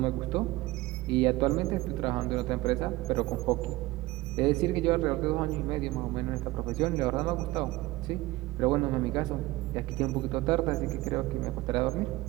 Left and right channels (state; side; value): quieter; left; 19.0 dB